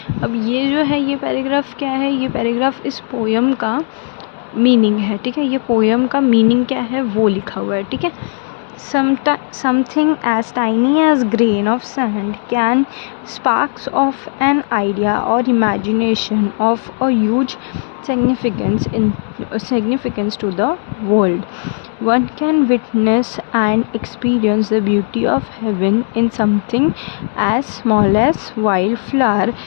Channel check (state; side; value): silent; right; 69 dB below the other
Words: अब ये जो है, ये पैराग्राफ क्या है? ये पैराग्राफ इस पोयम का मीनिंग है, ठीक है. ये पोयम का मीनिंग क्या है वो लिखा हुआ है, ठीक है. Something as tiny as grain of sand can sparks of an idea or imagination of a huge significance to the world. One can witness and experience the beauty of heaven in something as small as wildflower